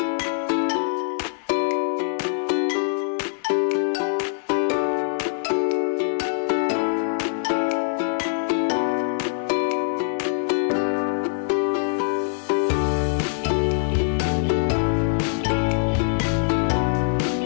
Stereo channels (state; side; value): silent; right; 59 dB below the other